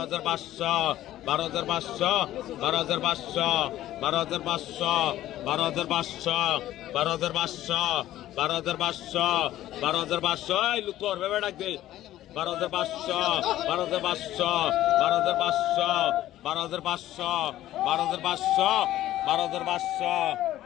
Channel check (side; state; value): right; quieter; 13.9 dB